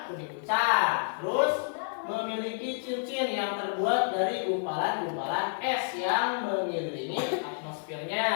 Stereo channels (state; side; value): silent; right; 58 dB below the other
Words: kuning pucat, terus memiliki cincin yang terbuat dari gumpalan-gumpalan es yang mengelilingi